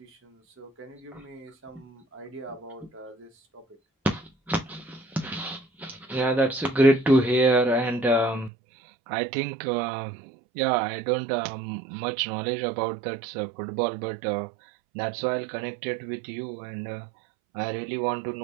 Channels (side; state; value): left; drops out; at 8.5 s